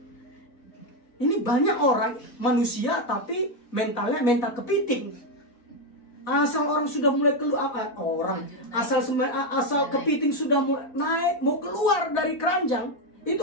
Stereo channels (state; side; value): late; right; 4.1 ms